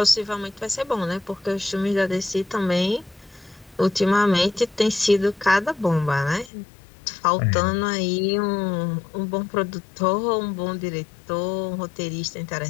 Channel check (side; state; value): right; drops out; at 6.5 s